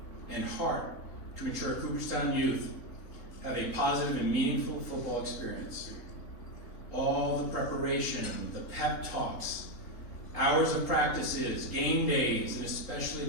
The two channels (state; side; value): late; right; 3.8 ms